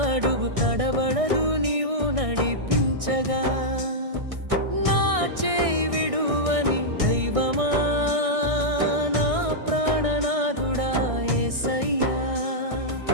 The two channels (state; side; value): late; left; 1.6 ms